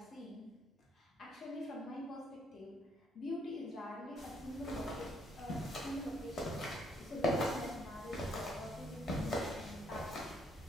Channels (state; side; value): normal; both; correlation 0.71